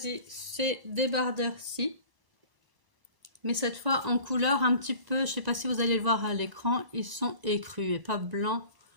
ces débardeurs-ci, mais cette fois en couleur un petit peu, je sais pas si vous allez le voir à l'écran, ils sont écrus et pas blanc,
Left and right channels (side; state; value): left; late; 1.0 ms